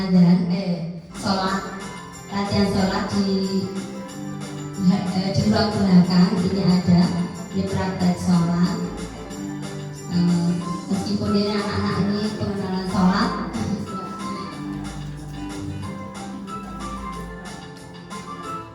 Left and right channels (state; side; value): identical; both; correlation 1.00